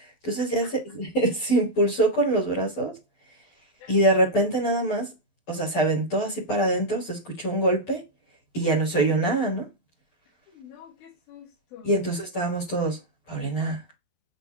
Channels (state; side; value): late; right; 12 ms